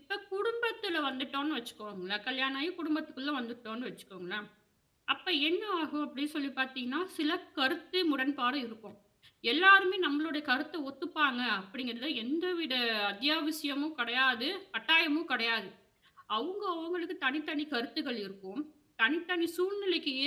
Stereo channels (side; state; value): both; identical; correlation 1.00